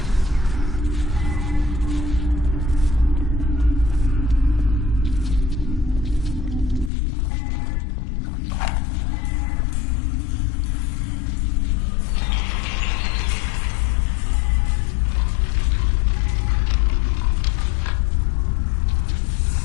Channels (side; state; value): right; drops out; at 6.9 s